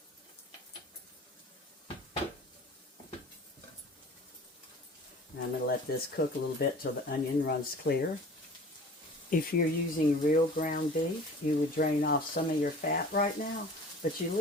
And I'm going to let this cook a little bit till the onion runs clear. If you're using real ground beef, you would drain off some of your fat right now, but you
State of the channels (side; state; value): both; normal; correlation 0.44